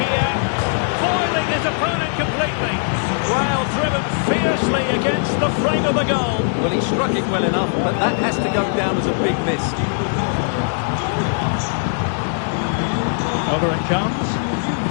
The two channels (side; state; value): right; silent; digital silence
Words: here. Foiling his opponent completely. Well, driven fiercely against the frame of the goal. Well, he struck it well enough, but that has to go down as a big miss. Over it comes.